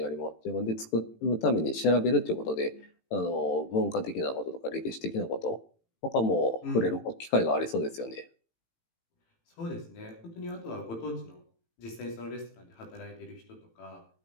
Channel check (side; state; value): right; late; 18 ms